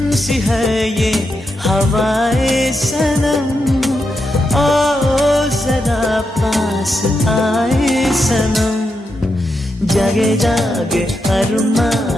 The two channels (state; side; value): normal; both; correlation 0.85